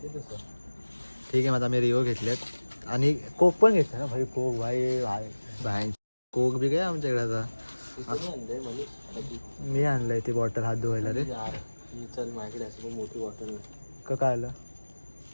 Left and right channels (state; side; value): inverted; both; correlation -1.00